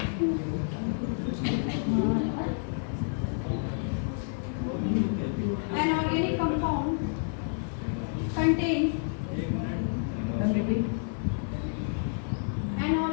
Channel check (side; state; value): right; silent; 58 dB below the other